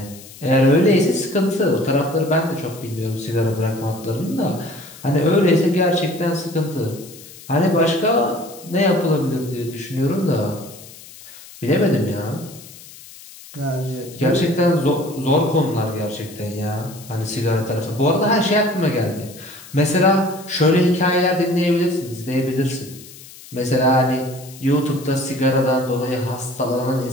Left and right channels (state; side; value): noise; left; hiss, 19 dB below the sound